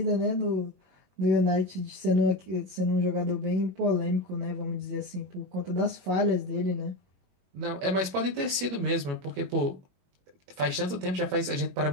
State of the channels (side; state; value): left; late; 21 ms